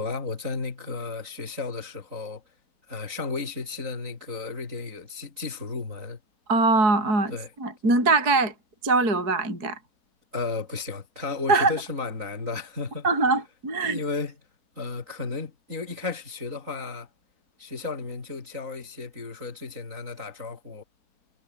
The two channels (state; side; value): late; left; 3.9 ms